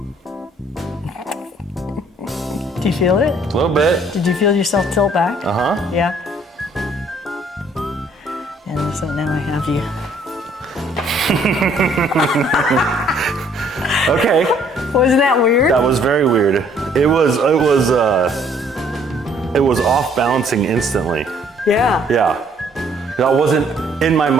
Do you feel it? A little bit. Did you feel yourself tilt back? Uh-huh. Yeah. And so now I have you. Okay. Wasn't that weird? That was very weird. It was off balancing instantly. Yeah. Yeah. That wasn't, in my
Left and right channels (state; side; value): normal; both; correlation 0.62